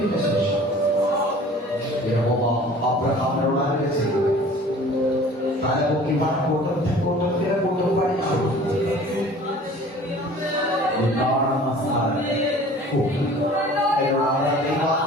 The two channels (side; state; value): both; normal; correlation 0.46